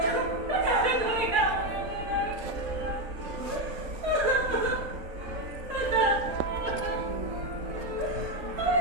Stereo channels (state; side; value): late; left; 3.7 ms